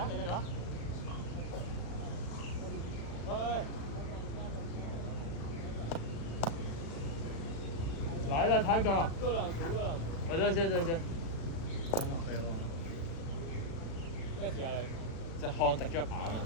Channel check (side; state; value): right; late; 35 ms